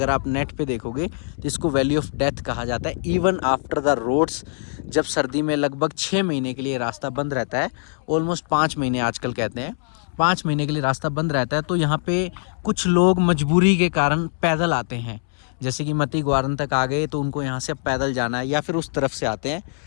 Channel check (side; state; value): right; silent; 64 dB below the other